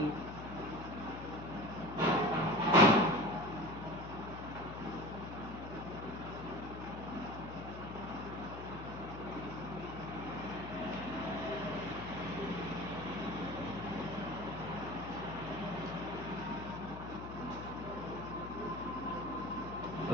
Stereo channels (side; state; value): left; noise; hum, 10 dB below the sound